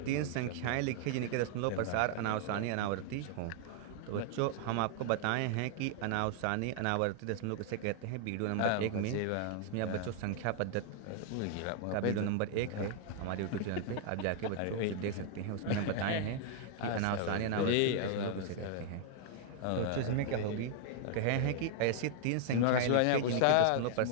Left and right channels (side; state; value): both; different; correlation 0.00